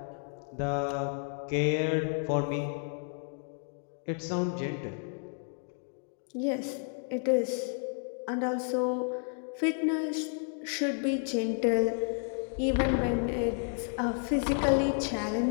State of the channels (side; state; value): right; silent; 57 dB below the other